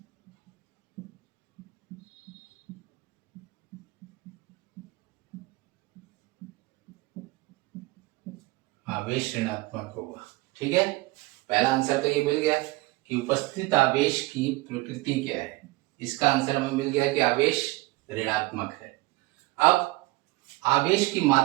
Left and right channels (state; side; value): quieter; left; 21.3 dB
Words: आवेश ऋणात्मक होगा, ठीक है। पहला आंसर तो ये मिल गया कि उपस्थित आवेश की प्रकृति क्या है, इसका आंसर हमें मिल गया कि आवेश ऋणात्मक है। अब आवेश की